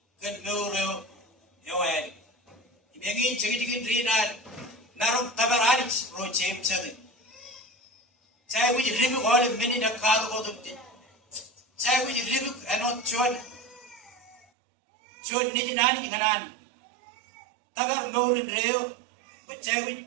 kan meuro yoel ibengi jigi drinan narum tabarani ro cem chadi cai wuji ribu gole meni na kaadu ko dukti cai wuji ribu anot chon ni nani nganan tabar meurin reo cai wuji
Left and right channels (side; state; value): left; drops out; at 14.5 s